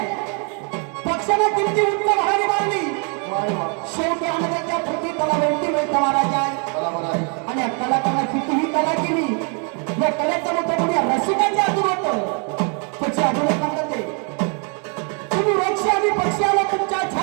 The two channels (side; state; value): left; quieter; 38.5 dB